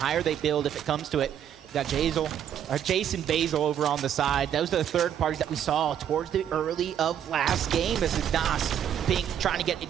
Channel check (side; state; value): left; quieter; 9.7 dB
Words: higher they build, if it comes to it, you got Jason Basil over on the side. Those are the third parties that we saw towards the early of last game. This is Nas Pink trying to get